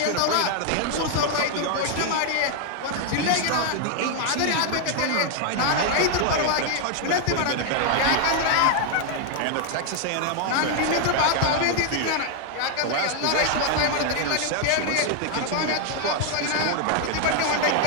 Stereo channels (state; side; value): different; both; correlation 0.00